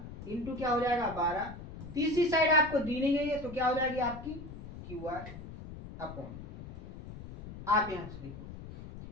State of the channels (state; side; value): noise; left; rumble, 12 dB below the sound